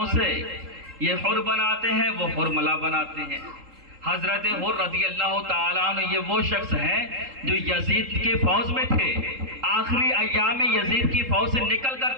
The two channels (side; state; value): left; late; 3.7 ms